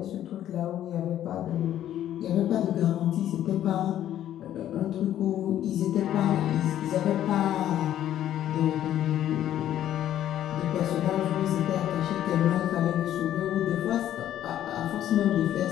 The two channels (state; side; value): quieter; right; 11.7 dB